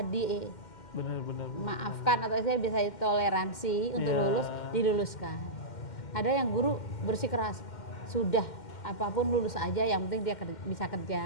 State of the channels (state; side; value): late; right; 2.1 ms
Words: maafkan atau saya bisa toleransi untuk lulus, diluluskan. Ada yang guru bersikeras, sudah apapun lulus aja, yang penting dia bisa